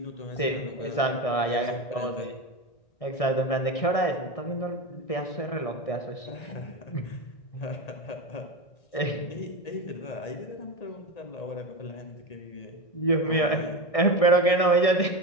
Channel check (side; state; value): right; late; 1.6 ms